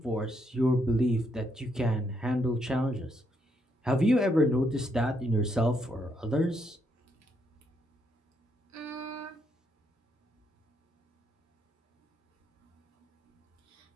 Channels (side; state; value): both; normal; correlation 0.76